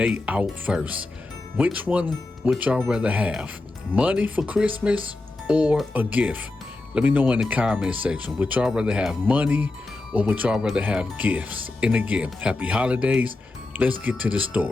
out first. Which one would y'all rather have? Money for Christmas or a gift? Let me know in the comment section. Would y'all rather have money or would y'all rather have gifts? And again, happy holidays. Let's get to the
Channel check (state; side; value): quieter; right; 3.1 dB